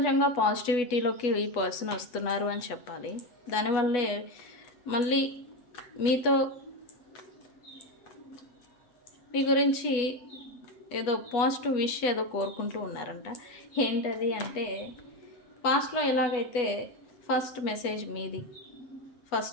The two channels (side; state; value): right; late; 8.2 ms